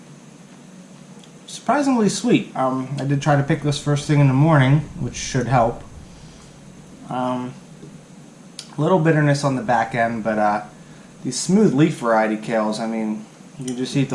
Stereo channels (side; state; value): both; identical; correlation 1.00